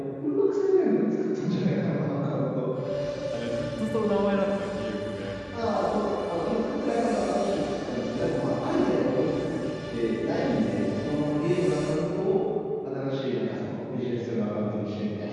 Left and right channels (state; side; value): identical; both; correlation 1.00